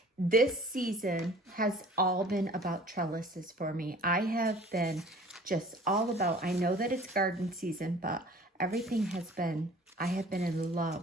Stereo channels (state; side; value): normal; both; correlation 0.48